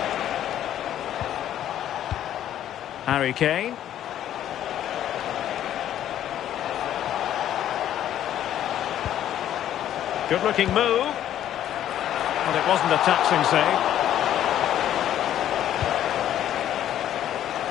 Harry Kane. Good-looking move. But it wasn't a taxing save.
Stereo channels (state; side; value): quieter; right; 11.3 dB